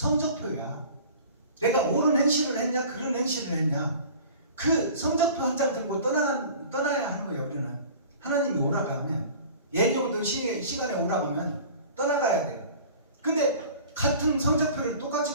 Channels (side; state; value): both; inverted; correlation -0.43